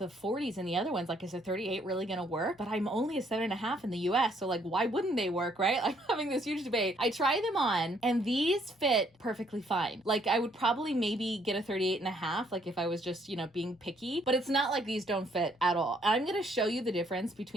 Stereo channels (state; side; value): normal; both; correlation 0.67